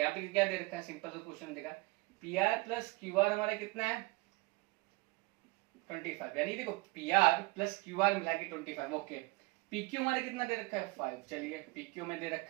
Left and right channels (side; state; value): left; quieter; 24.4 dB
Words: पे क्या दे रखा है, सिंपल सा क्वेश्चन देखा, P R plus Q are हमारा कितना है 25, यानी देखो P R plus Q are मिला के 25। ओके, पी क्यू हमारे कितना दे रखा है 5, चलिए पी क्यू में दे